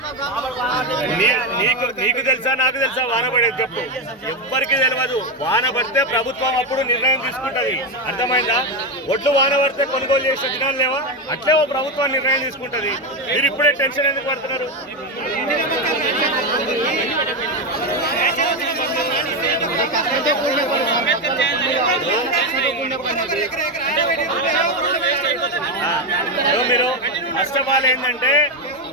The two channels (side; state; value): both; normal; correlation 0.10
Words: నీకు తెలుసా, నాకు తెలుసా వాన పడేది చెప్పు? ఎవ్వరికి తెలియదు. వాన పడితే ప్రభుత్వం అప్పుడు నిర్ణయం తీసుకుంటది, అర్థమైందా? ఒడ్లు వాన పడితే కొనుగోలు చేసే దినాలు లేవా? అట్లే ఓ ప్రభుత్వం నిర్ణయం తీసుకుంటది. మీరు ఇప్పుడే టెన్షన్ ఎందుకు పడుతున్నారు? మీరు ఫస్ట్ ఆఫ్ ఆల్ ఏంటంటే